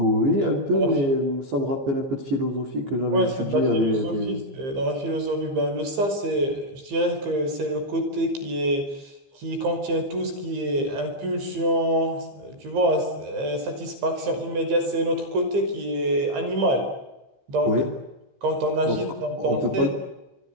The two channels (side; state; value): left; late; 15 ms